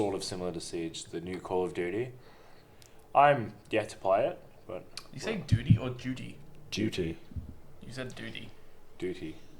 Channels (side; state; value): both; identical; correlation 1.00